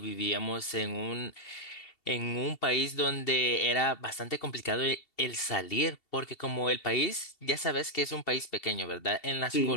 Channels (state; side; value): late; right; 2.7 ms